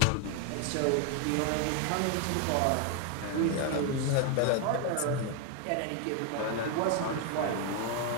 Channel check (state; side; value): different; both; correlation 0.01